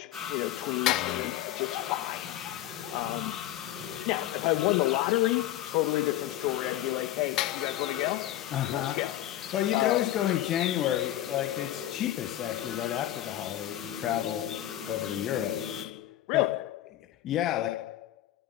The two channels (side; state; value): right; quieter; 13.5 dB